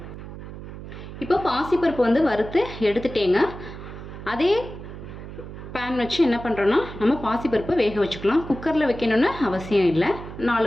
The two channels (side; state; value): right; noise; hum, 12 dB below the sound